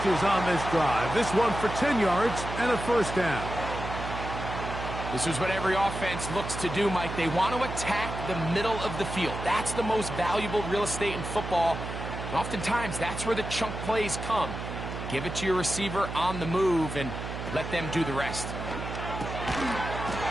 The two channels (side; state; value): right; noise; hum, 7 dB below the sound